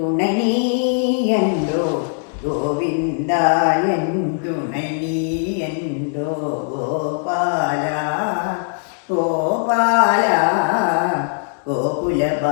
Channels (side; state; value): right; silent; 66 dB below the other